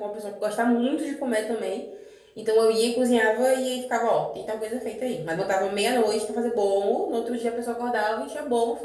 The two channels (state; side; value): identical; both; correlation 1.00